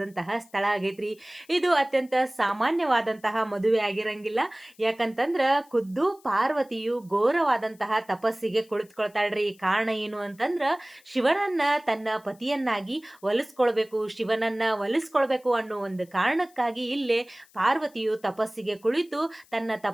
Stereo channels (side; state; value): left; noise; hiss, 29 dB below the sound